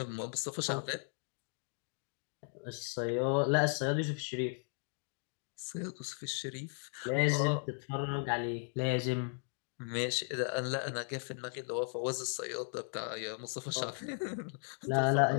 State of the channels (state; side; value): silent; right; 53 dB below the other